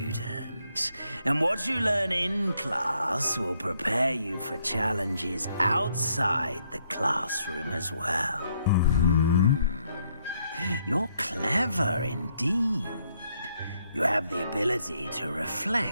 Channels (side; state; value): both; inverted; correlation -0.73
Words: And what you learn in class will prepare you for challenges outside the classroom as well. You're clever indeed. You have the ability to